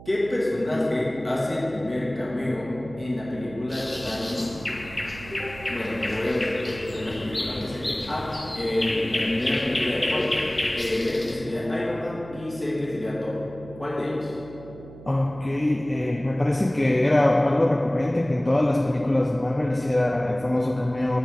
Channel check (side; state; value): right; noise; hum, 17 dB below the sound